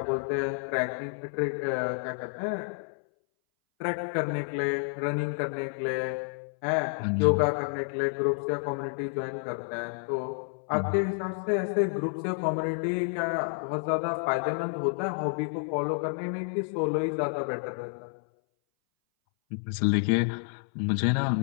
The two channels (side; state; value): right; silent; 58 dB below the other